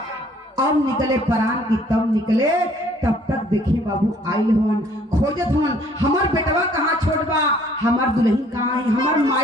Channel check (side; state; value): both; normal; correlation 0.60